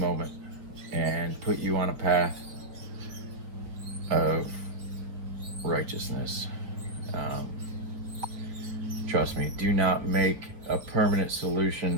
and put you on a path of righteousness. Trust me, do not make a permanent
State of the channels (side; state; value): left; late; 6.2 ms